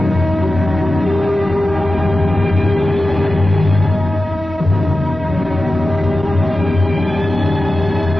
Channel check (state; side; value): normal; both; correlation 0.94